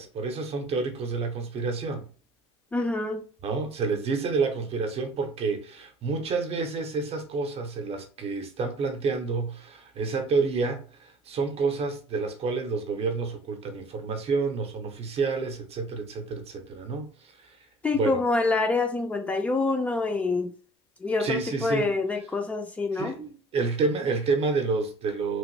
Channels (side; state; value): both; normal; correlation 0.51